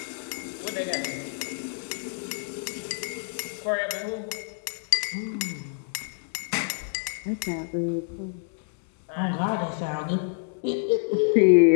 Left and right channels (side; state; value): right; silent; 60 dB below the other